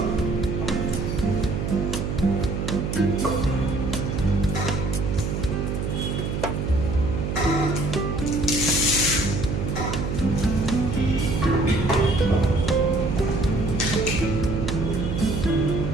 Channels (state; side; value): noise; right; hum, 2 dB below the sound